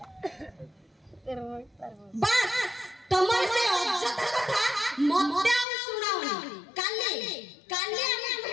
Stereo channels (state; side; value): drops out; right; at 5.7 s